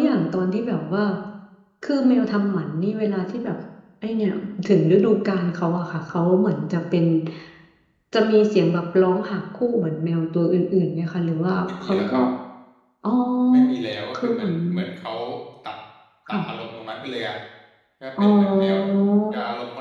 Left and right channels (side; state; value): both; identical; correlation 1.00